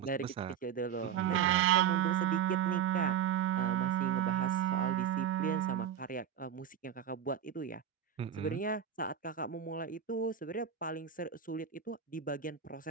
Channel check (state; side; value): quieter; left; 8.7 dB